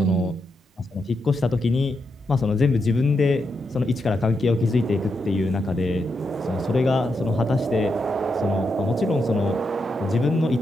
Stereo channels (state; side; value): normal; both; correlation 0.84